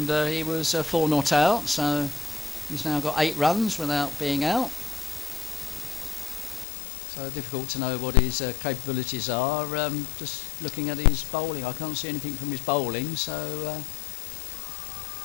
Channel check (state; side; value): drops out; right; at 6.7 s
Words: he was 4 not out, so he's now got 8 runs without being out. So difficult to know what his capabilities are. Just looking at his bowling, I can't see anything from his bowling, so...